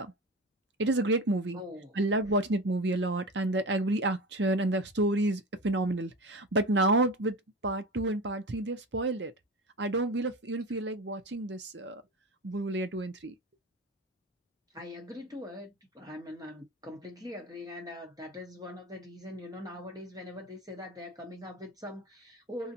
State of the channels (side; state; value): both; normal; correlation 0.28